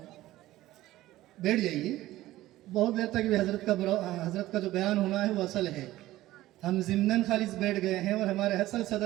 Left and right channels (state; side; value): quieter; left; 15.9 dB